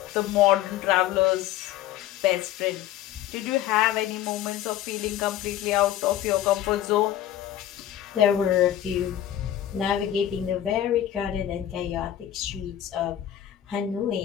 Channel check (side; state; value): right; quieter; 11.9 dB